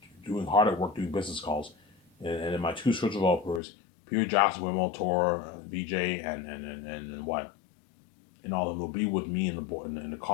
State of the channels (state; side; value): drops out; right; at 3.6 s